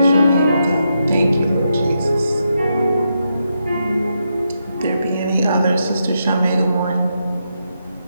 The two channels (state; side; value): inverted; both; correlation -0.83